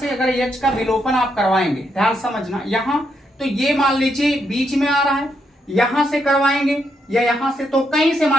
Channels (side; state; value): both; normal; correlation 0.79